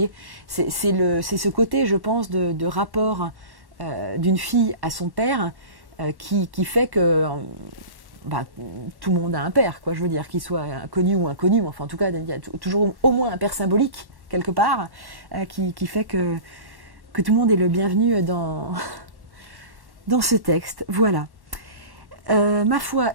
c'est ce côté, je pense, de rapport d'une fille à son père qui fait que tout le monde a un père, quoi, je veux dire, qu'il soit connu ou inconnu, mais enfin en tout cas, il y a toujours au moins un père symbolique, quelque part, qui fait que tout le monde est le bienvenu dans ce texte. Voilà. Ma foi,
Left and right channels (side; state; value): left; late; 1.1 ms